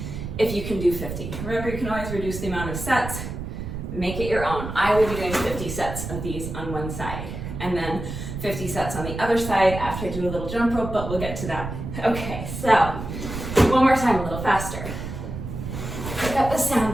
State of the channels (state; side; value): noise; right; rumble, 7 dB below the sound